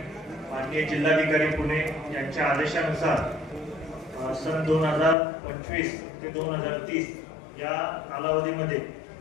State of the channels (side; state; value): right; drops out; at 5.2 s